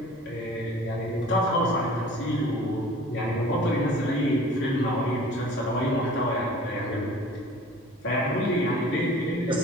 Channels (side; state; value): both; normal; correlation 0.46